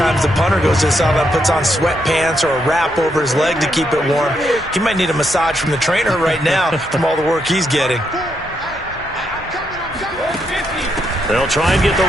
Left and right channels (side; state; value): both; normal; correlation 0.79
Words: the punter goes to the sideline, puts on sweatpants or a wrap over his leg to keep it warm. He might need a massage from the trainer right now from all the work he's getting. They'll try and get the